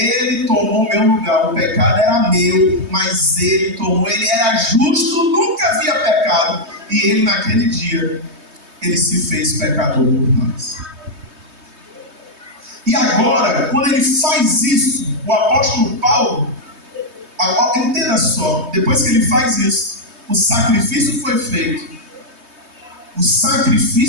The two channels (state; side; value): late; left; 3.2 ms